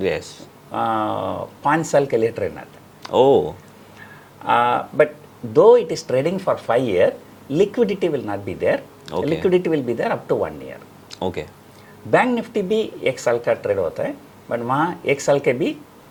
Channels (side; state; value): both; identical; correlation 1.00